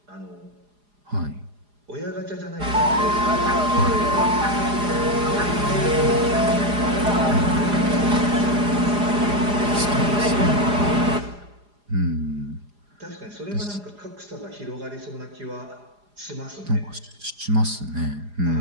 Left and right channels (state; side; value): late; left; 4.9 ms